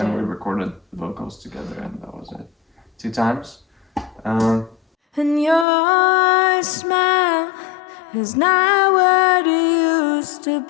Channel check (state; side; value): drops out; right; at 5.7 s